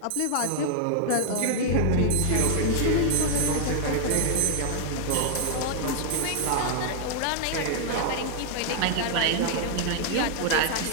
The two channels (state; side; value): different; both; correlation 0.00